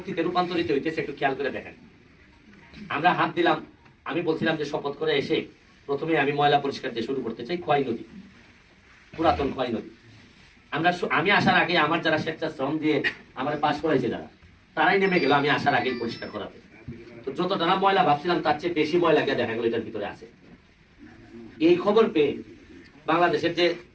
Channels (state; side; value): identical; both; correlation 1.00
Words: রূপান্তরিত হইতেছে একটু খেয়াল করে দেখেন। আমরা হাত দিলাম, আমি বলছিলাম যে শপথ করে এসে প্রথমে আমি ময়লা পরিষ্কার দিয়ে শুরু করতে চাই খোয়াই নদী, পুরাতন খোয়াই নদী। আমি আসার আগে আমার যারা স্বেচ্ছাশ্রম দিয়ে আমার পাশ করাইছে যারা, তারাই নেমে গেল আমি আসার আগেই পরিষ্কার করাতে। তো যতটা না ময়লা ভাবছিলাম তার চেয়ে বেশি ময়লা গিয়ে দেখা গেল এটার ভিতরে আছে। এই খবর পেয়ে বাংলাদেশের যে